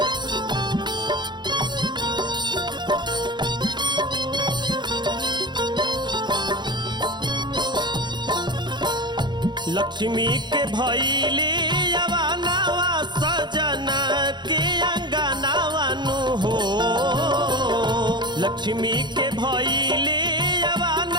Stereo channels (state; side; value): late; left; 0.21 ms